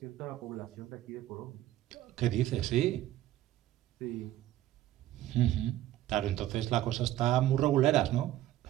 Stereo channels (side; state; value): left; quieter; 13.8 dB